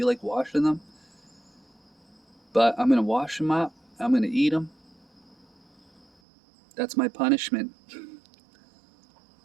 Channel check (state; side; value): drops out; left; at 6.1 s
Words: like washing them. But I'm going to wash them up. I'm going to eat them. That's my punishment.